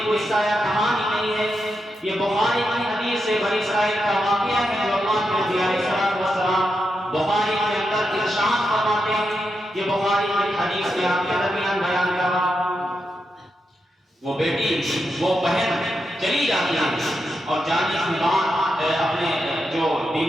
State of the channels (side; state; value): both; normal; correlation 0.86